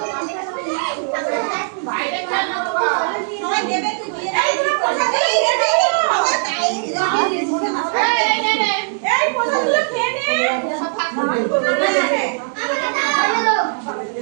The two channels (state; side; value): silent; left; 66 dB below the other